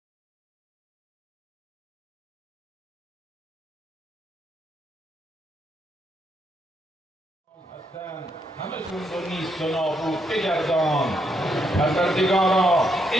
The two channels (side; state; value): both; normal; correlation 0.77